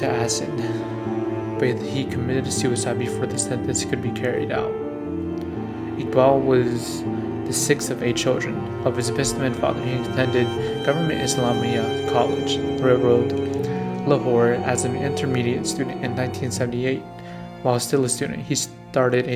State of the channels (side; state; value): both; identical; correlation 1.00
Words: acid. But he committed suicide before the sentence could be carried out. Iqbal was the sixth of 8 children. Of his businessman father, he attended Government Islamia College, Railroad, Lahore as an intermediate student in 1978. While still a student, he started